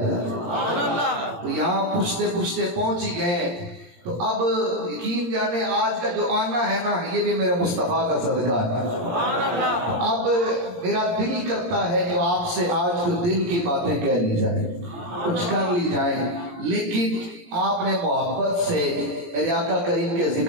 گا۔ تو یہاں پوچھتے پوچھتے پہنچ ہی گئے، تو اب یقین جانے آج کا جو آنا ہے نا، یہ بھی میرے مصطفیٰ کا صدقہ ہے۔ اب میرا دل ہی کرتا ہے کہ آپ سے آج کچھ دل کی باتیں کہہ لی جائیں، کچھ کر لی جائیں، لیکن آپ نے محبت سے میرے آقا کریم کے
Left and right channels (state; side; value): late; left; 17 ms